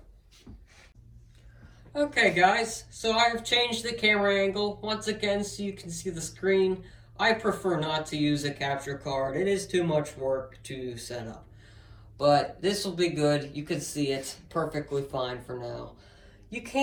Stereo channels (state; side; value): identical; both; correlation 1.00